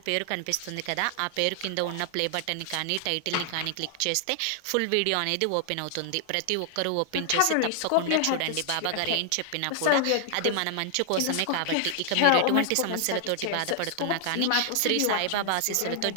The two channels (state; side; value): different; both; correlation 0.00